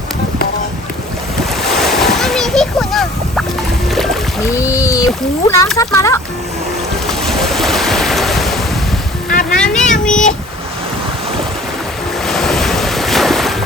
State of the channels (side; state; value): both; normal; correlation 0.49